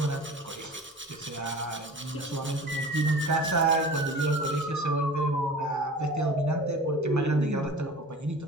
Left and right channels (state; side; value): normal; both; correlation 0.39